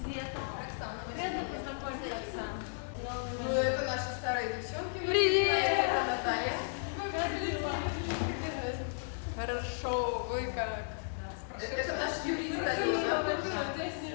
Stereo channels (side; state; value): right; silent; 55 dB below the other